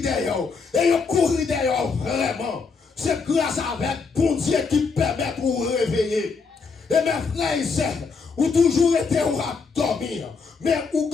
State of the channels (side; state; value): right; quieter; 4.9 dB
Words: derrière. Et ils courent derrière vraiment. C'est grâce avec bon Dieu qui permet de vous réveiller. Et mes frères et sœurs, ou toujours été ou à dormir. Mais ou